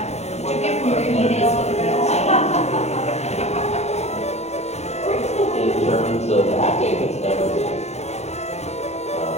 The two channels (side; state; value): right; late; 0.32 ms